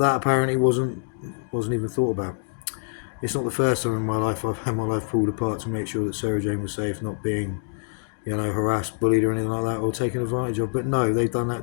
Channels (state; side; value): silent; right; 56 dB below the other